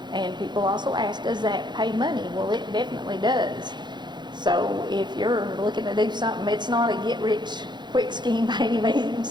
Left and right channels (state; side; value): late; left; 0.21 ms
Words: and people also ask, does that pay money? Well, it definitely does. So if you're looking to do something, it's not a get-rich-quick scheme by any means.